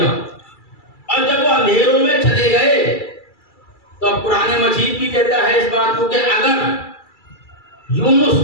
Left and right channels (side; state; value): right; late; 2.3 ms